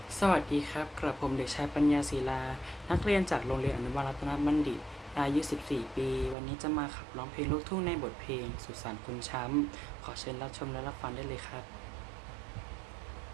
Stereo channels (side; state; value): left; drops out; at 6.4 s